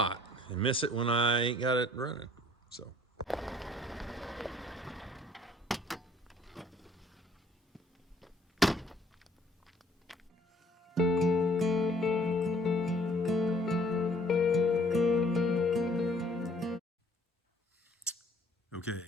and miss it when I ain't got it running. So. Okay,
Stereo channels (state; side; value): normal; both; correlation 0.59